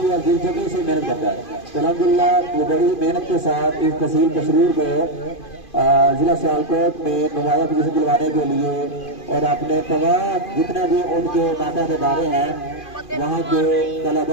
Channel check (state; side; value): late; right; 2.5 ms